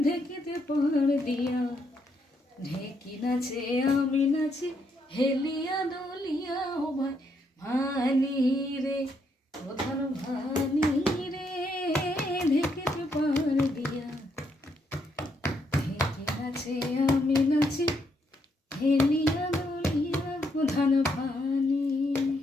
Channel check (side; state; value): both; normal; correlation 0.76